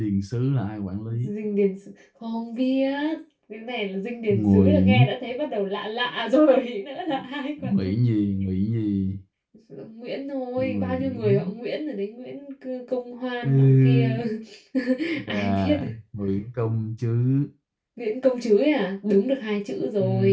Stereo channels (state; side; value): identical; both; correlation 1.00